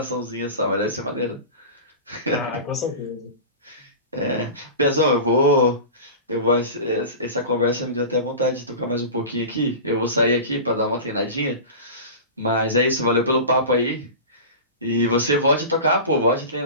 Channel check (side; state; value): both; inverted; correlation -0.32